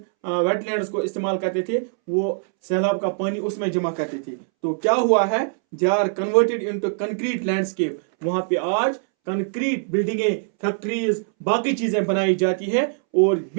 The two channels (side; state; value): left; silent; 64 dB below the other